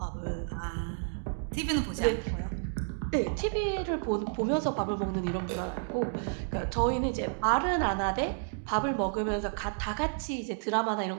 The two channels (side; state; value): left; silent; digital silence